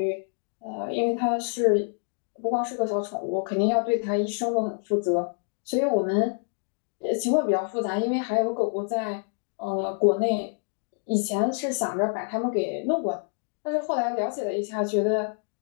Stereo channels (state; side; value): silent; right; 60 dB below the other